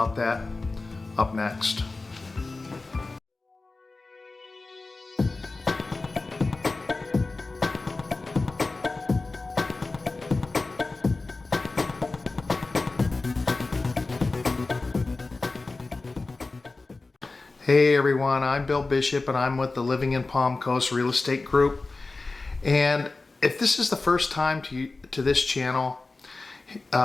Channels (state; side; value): quieter; right; 3.5 dB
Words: that up next. Hey everyone, I'm Bill Bishop and I'm with the Living in Palm Coast Real Estate Group. And if this is the first time to this channel